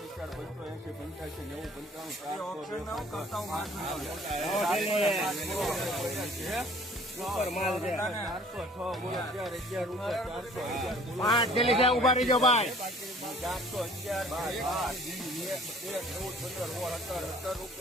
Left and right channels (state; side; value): normal; both; correlation 0.52